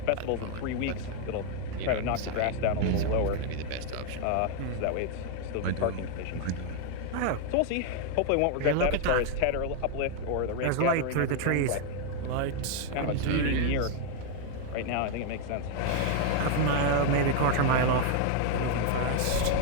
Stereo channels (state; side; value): different; both; correlation 0.00